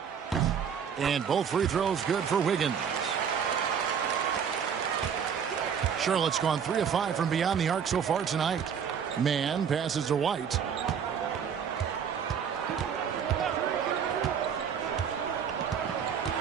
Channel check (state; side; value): quieter; left; 7.5 dB